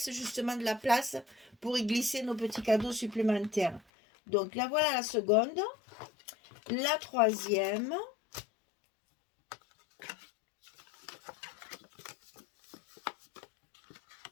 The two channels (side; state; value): right; drops out; at 3.8 s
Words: justement de la place pour y glisser nos petits cadeaux supplémentaires. Donc là, voilà la seconde. La troisième.